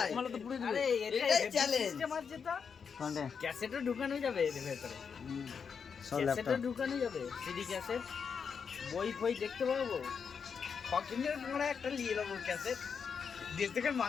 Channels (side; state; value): right; quieter; 6.3 dB